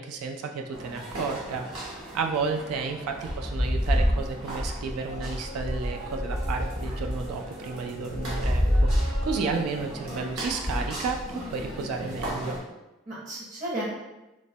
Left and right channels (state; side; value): normal; both; correlation 0.66